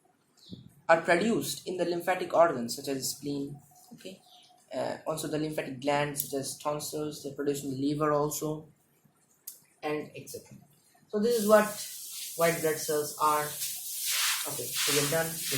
are produced in the lymphatic organs such as spleen. Okay, also the lymphatic glands such as tonsils, they produce in the liver also, and etc. So this is what white blood cells are. Okay, so we're done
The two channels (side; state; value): both; identical; correlation 1.00